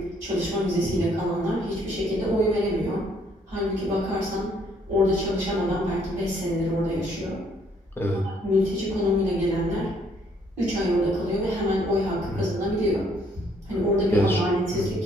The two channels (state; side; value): normal; both; correlation 0.66